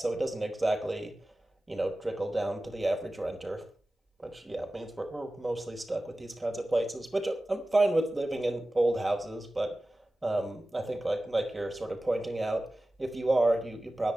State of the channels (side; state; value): both; normal; correlation 0.96